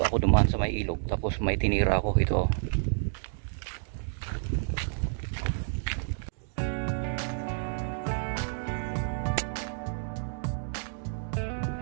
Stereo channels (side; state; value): left; silent; digital silence